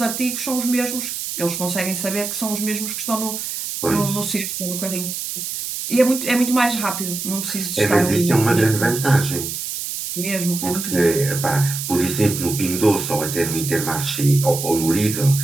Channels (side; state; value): right; noise; hiss, 5 dB below the sound